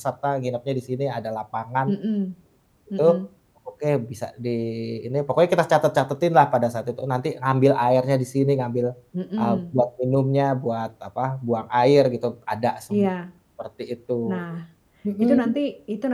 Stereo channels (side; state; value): both; identical; correlation 1.00